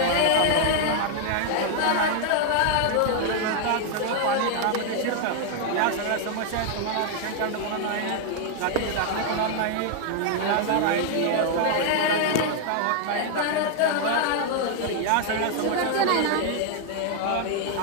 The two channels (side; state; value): both; different; correlation 0.00